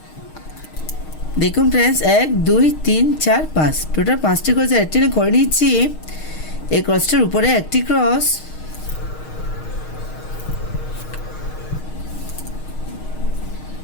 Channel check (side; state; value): right; late; 6.4 ms